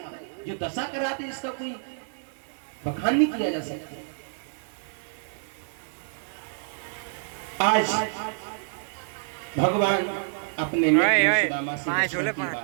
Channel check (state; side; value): silent; left; digital silence